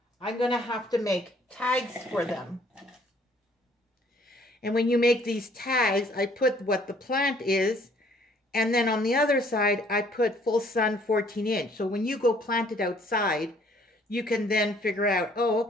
I'm going to have to make tags for them. And when you make these tags, I put what the plant is, and then on the other side, I put full sun 14 inch. So when you go plant it outside, you can then figure out, oh,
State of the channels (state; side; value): normal; both; correlation 0.60